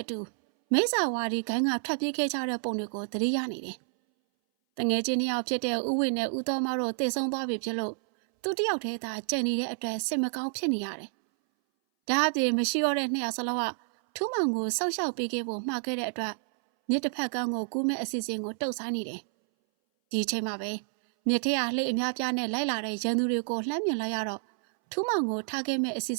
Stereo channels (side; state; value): left; silent; 58 dB below the other